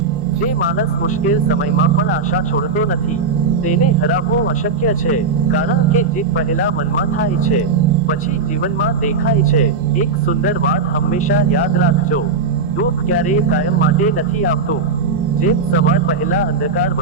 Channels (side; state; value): left; quieter; 4.4 dB